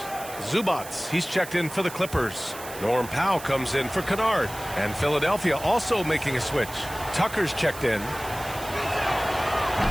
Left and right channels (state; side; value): noise; right; hiss, 13 dB below the sound